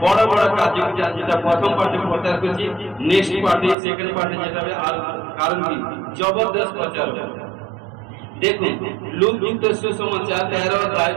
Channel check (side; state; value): left; drops out; at 3.8 s